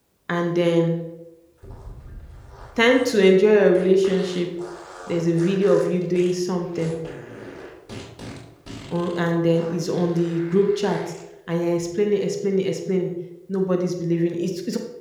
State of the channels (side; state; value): both; identical; correlation 1.00